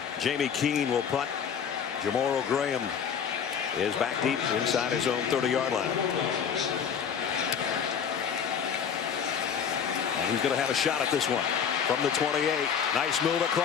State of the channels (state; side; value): quieter; right; 7.4 dB